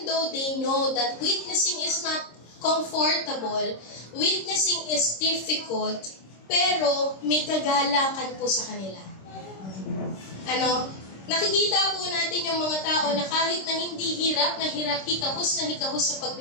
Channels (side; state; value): right; late; 26 ms